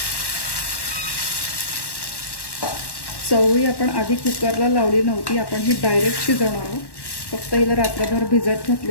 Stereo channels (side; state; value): right; late; 1.1 ms